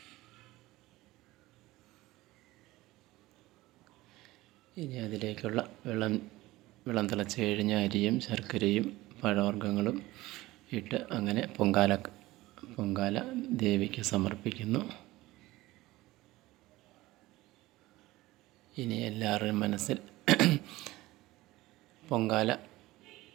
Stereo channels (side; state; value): left; quieter; 18.4 dB